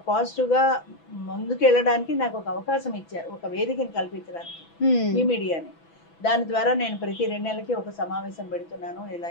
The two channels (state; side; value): late; right; 6.0 ms